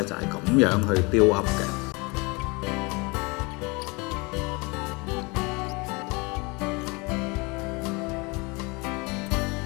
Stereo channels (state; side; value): quieter; right; 27.5 dB